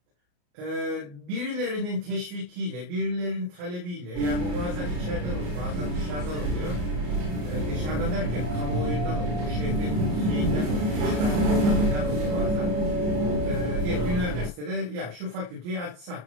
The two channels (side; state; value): left; late; 34 ms